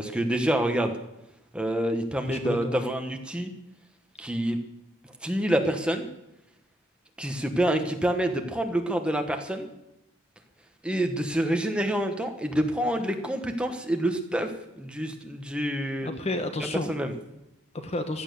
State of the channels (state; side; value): normal; both; correlation 0.79